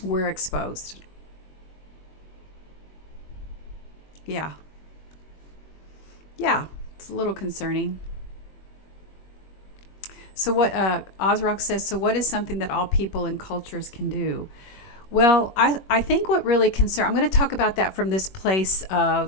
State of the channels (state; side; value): late; right; 21 ms